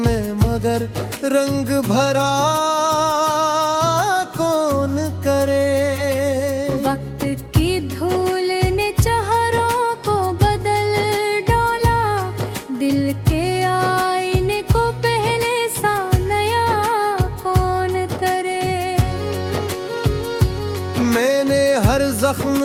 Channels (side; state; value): both; identical; correlation 1.00